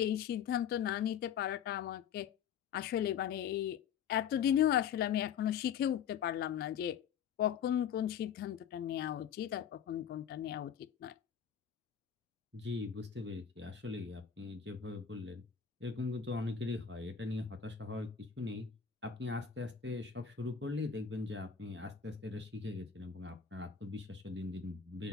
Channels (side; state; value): right; quieter; 7.8 dB